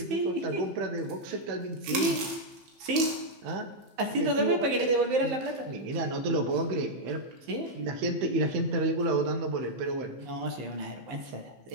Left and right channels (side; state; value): left; late; 15 ms